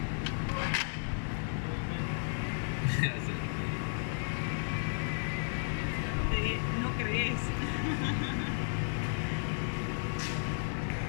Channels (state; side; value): silent; right; digital silence